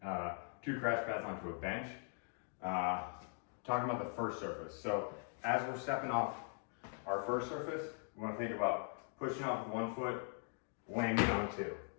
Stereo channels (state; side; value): silent; right; 50 dB below the other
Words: 2 crash pads onto a bench. Talking about the first surface. So as we're stepping off our first surface, we want to think about pushing off with 1 foot, landing on 2.